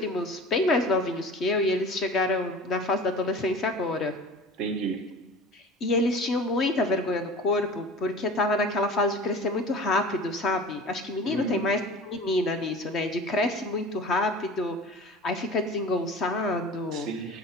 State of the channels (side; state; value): both; normal; correlation 0.39